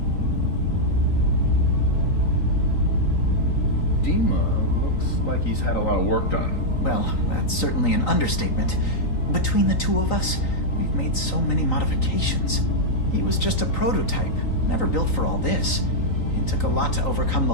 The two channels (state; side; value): late; right; 3.9 ms